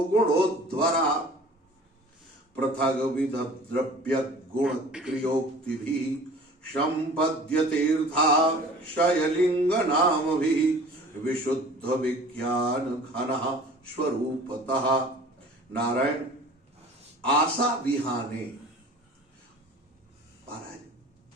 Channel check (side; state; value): both; normal; correlation 0.45